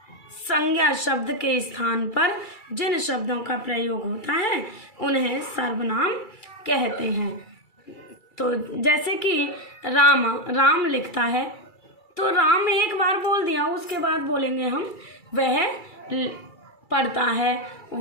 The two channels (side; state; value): right; late; 2.3 ms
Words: संज्ञा शब्द के स्थान पर जिन शब्दों का प्रयोग होता है उन्हें सर्वनाम कहते हैं। तो जैसे कि राम लिखता है, तो राम एक बार बोल दिया, उसके बाद बोलेंगे हम वह पढ़ता है,